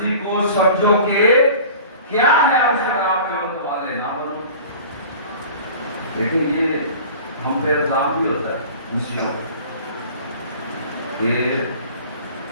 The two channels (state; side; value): inverted; both; correlation -0.42